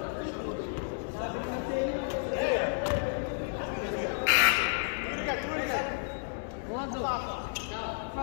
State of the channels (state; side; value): silent; right; digital silence